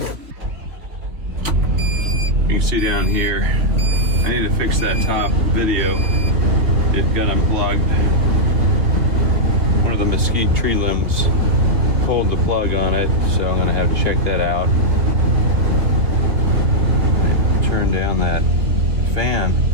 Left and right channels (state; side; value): late; left; 3.4 ms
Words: You can see down here, I need to fix that top video. It got unplugged. One of the mesquite tree limbs pulled the plug on it, so I'm gonna have to check that out. Turn down that fan,